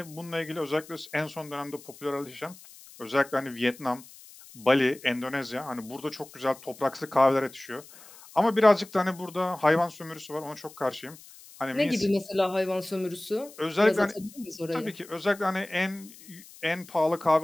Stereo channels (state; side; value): noise; left; hiss, 20 dB below the sound